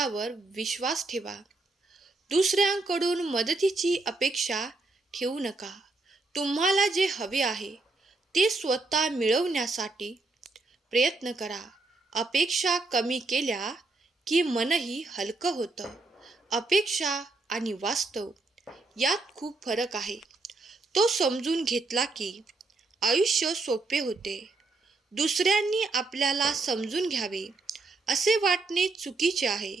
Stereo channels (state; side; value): quieter; left; 3.4 dB